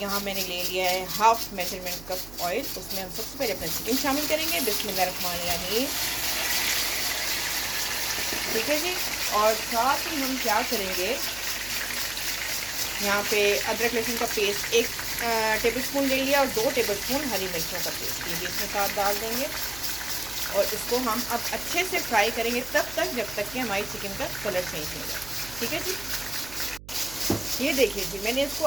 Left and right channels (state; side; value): noise; right; hum, 17 dB below the sound